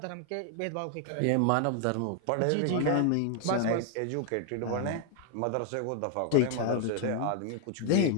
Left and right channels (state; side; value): different; both; correlation 0.00